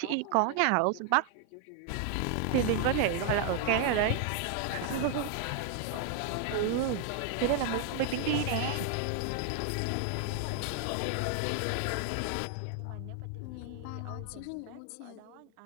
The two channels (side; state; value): both; different; correlation 0.00